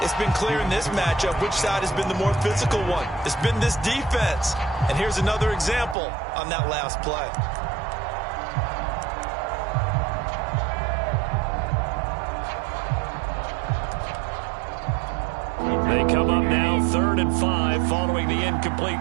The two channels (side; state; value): left; drops out; at 6.0 s